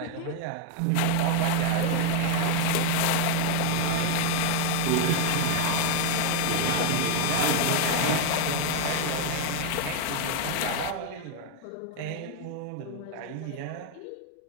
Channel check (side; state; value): both; different; correlation 0.01